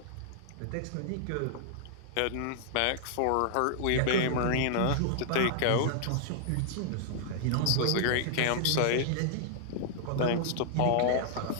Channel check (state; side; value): different; both; correlation -0.01